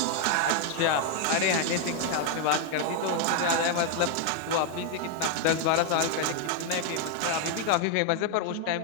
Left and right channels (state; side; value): different; both; correlation 0.00